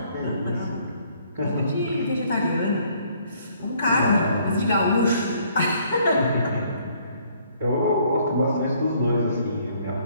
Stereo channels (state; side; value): inverted; both; correlation -0.63